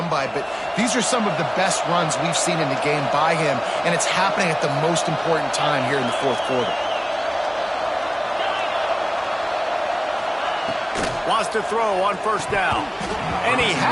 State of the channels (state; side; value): identical; both; correlation 1.00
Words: by, but these are some of the best runs we've seen in the game by him, and it's happening at the most important time here in the fourth quarter. Wants to throw on first down. And he